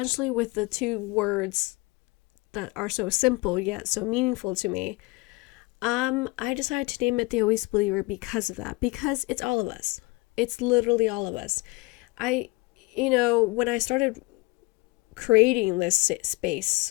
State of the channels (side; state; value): right; quieter; 24.5 dB